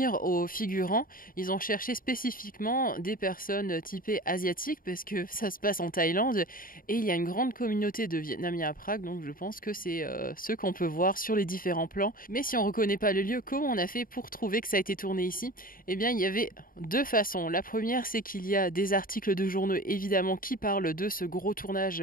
aux figurants, ils ont cherché spécifiquement des personnes typées asiatiques, parce que ça se passe en Thaïlande. Et il y a une grande communauté de Vietnamiens à Prague, donc je pense que c'est ceux qu'on peut voir sur les différents plans. Mais si on ne reconnaît pas le lieu, comment on a fait pour trouver que ça a été tourné ici? Eh bien, il y avait deux façons. La première, c'est qu'il y a des articles de journaux évidemment qui parlent de ce gros tournage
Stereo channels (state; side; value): late; right; 0.41 ms